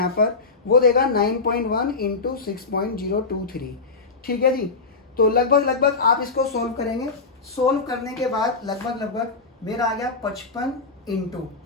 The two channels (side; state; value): right; quieter; 4.1 dB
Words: पर वो देगा 9.1 × 6.023, ठीक है जी। तो लगभग आप इसको सोल्व करेंगे। सोल्व करने के बाद लगभग मेरा आ गया 55 ×